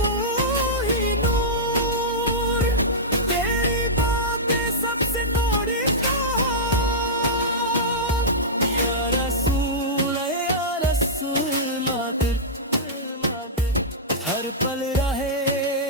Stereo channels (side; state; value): both; normal; correlation -0.13